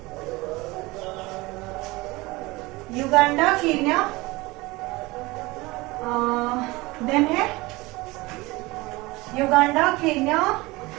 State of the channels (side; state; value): left; quieter; 22.0 dB